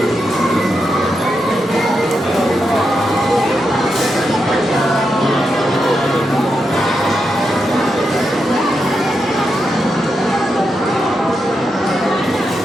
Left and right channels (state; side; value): normal; both; correlation 0.85